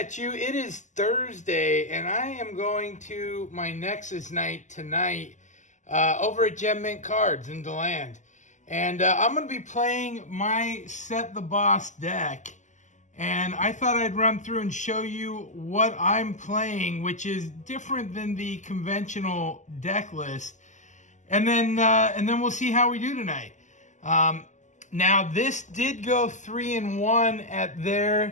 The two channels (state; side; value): late; right; 0.35 ms